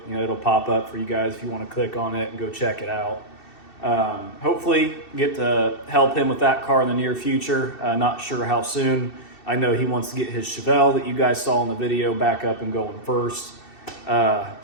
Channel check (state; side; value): late; right; 2.7 ms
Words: You know, it'll pop up for you guys if you want to click on it and go check it out. Hopefully get to help him with that car in the near future. Not sure how soon. I know he wants to get his Chevelle that you guys saw in the video back up and going first.